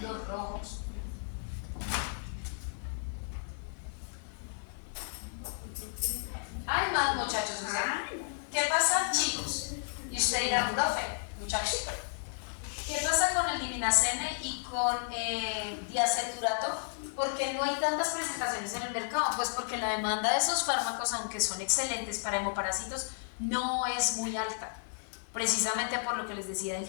rojos. Hay más, muchachos. ¿Qué pasa, chicos? Y usted dirá, profe, muchachos, ¿qué pasa con el diminacene y con diaceturato? ¿Por qué no hay tantas presentaciones en el mercado? Pues porque la demanda de esos fármacos, aunque son excelentes para hemoparásitos, no es muy alta, precisamente por lo que les decía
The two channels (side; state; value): right; silent; digital silence